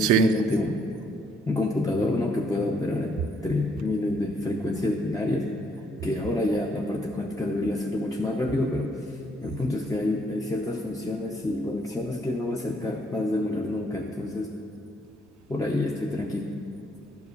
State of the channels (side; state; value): both; normal; correlation 0.69